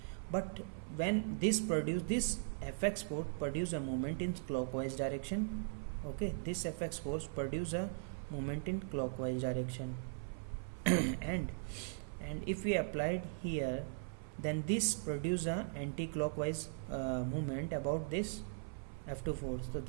But when this Fx force produce a moment in clockwise direction. Okay, this Fx force produce a moment in clockwise direction and if we applied here, then this produce a anti-clockwise movement about this F2 force. So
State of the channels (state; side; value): silent; left; 52 dB below the other